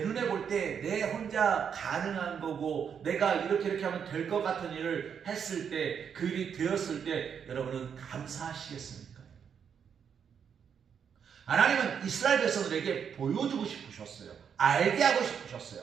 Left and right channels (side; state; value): left; quieter; 7.4 dB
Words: 볼 때 내 혼자 가능한 거고 내가 이렇게 하면 될 것 같은 일을 했을 때, 그 일이 되었을 때 여러분은 감사하시겠습니까? 하나님은 이스라엘 백성들에게 보여주고 싶으셨어요. 알게 하고 싶으셨어요.